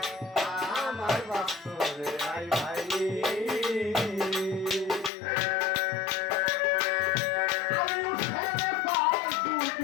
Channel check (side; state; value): right; drops out; at 5.1 s